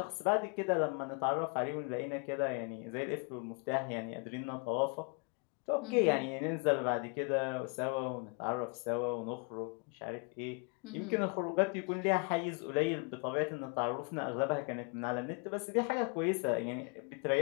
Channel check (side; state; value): right; quieter; 35.0 dB